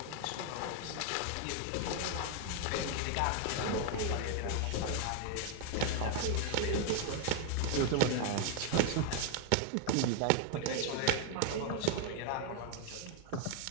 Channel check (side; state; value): both; different; correlation 0.00